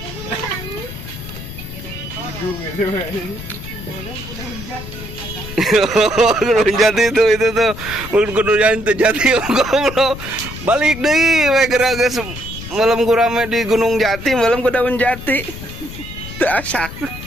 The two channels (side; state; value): left; noise; rumble, 11 dB below the sound